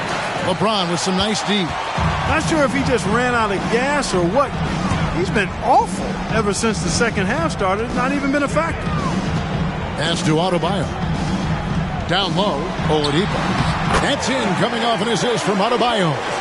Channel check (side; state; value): both; identical; correlation 1.00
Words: LeBron with some nice D. Not sure if he just ran out of gas or what. He's been awful ever since the second half started. Not even been a factor. Pass to Adebayo. Down low, Oladipo. That's in, coming off an assist from Adebayo.